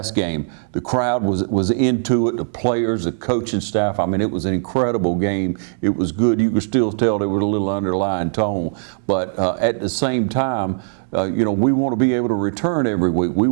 game, the crowd was into it, the players, the coaching staff. I mean, it was an incredible game. It was good. You could still tell there was a little underlying tone. But at the same time, you know, we want to be able to return every week. We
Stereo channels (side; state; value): left; silent; digital silence